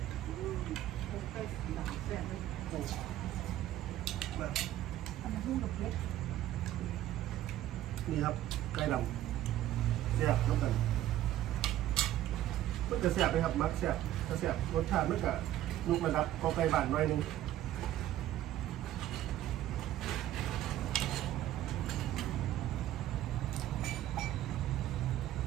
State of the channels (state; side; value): quieter; left; 13.3 dB